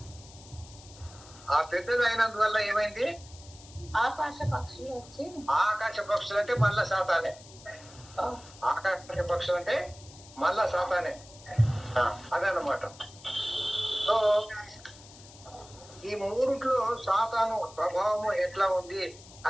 ఆ పెద్దది అయినందువల్ల ఏమైంది? ఆకాశ పక్షులు వచ్చి ఆకాశ పక్షులు అంటే మళ్ళా సాతానే. ఆకాశ పక్షులు అంటే మళ్ళా సాతానే. అదన్నమాట. సో ఈ మూడిట్లో సాతాను ప్రభావము ఎట్లా ఉంది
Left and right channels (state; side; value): noise; left; hiss, 20 dB below the sound